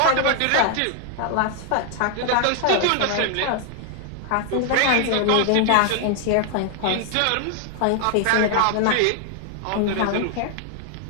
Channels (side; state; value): both; different; correlation 0.00